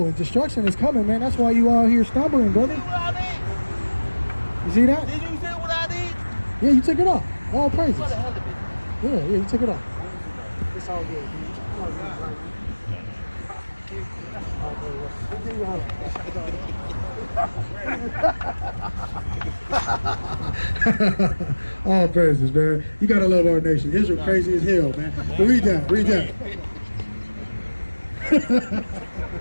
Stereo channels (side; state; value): both; inverted; correlation -1.00